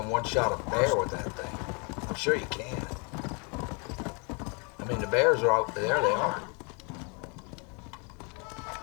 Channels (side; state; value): right; quieter; 33.6 dB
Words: one-shot a bear with that thing. I'm sure you can. I mean, the bears are out there. They are.